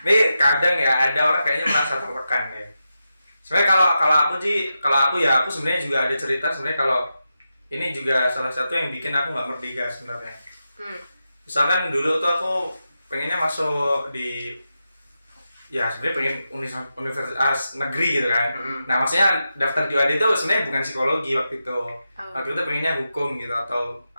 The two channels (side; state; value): both; inverted; correlation -0.89